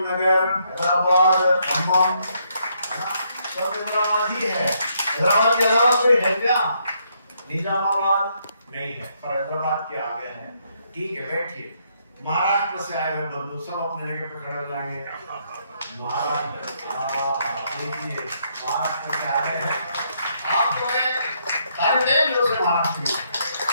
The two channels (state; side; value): inverted; both; correlation -0.73